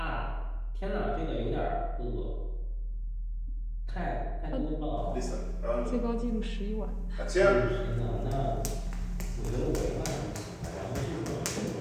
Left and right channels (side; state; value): both; identical; correlation 1.00